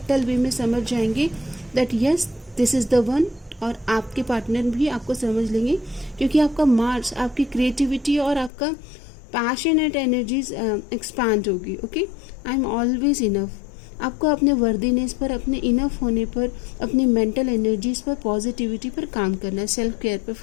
वे में समझ जाएंगे that yes this is the one. और आपके पार्टनर भी आपको समझ लेंगे क्योंकि आपका मार्स, आपकी क्रिएटिविटी और आपका पैशनेट एनर्जीज एक्सपांड होगी। Okay, I am always enough, आपको अपने वर्दीनेस पर, अपने इनफ होने पर, अपनी मेंटल एनर्जीज पर, पॉजिटिविटी पर काम करना है, सेल्फ केयर पर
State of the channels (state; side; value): drops out; right; at 8.5 s